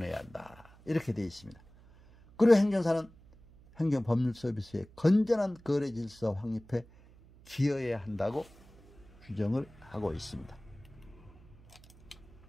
한다. 이렇게 되어 있습니다. 그리고 행정사는 행정법률 서비스의 건전한 거래 질서 확립에 기여해야 한다고 규정을 하고 있습니다.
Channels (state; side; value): noise; right; hum, 24 dB below the sound